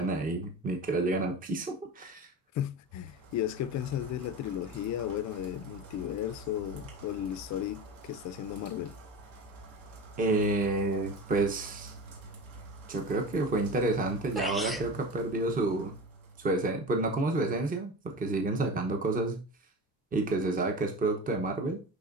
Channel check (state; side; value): normal; both; correlation 0.29